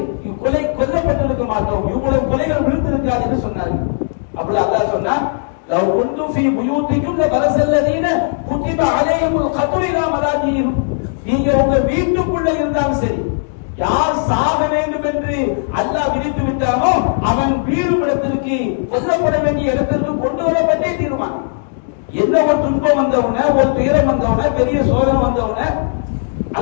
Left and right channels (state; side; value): silent; right; digital silence